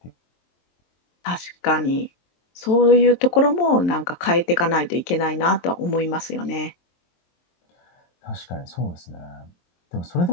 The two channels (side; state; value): right; late; 23 ms